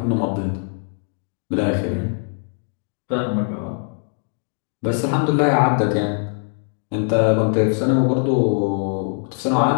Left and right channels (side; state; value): right; silent; 60 dB below the other